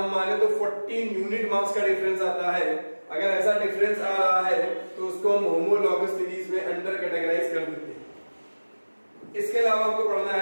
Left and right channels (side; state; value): both; inverted; correlation -1.00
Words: माने तो 14 यूनिट मास का डिफरेंस आता है। अगर ऐसा डिफरेंस आ रहा है तो उसको हम होमोलॉगस सीरीज में अंडर कैटेगराइज कर देते हैं। इसके अलावा आपको पढ़ना